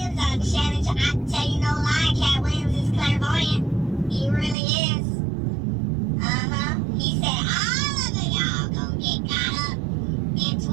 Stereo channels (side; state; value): left; drops out; at 4.5 s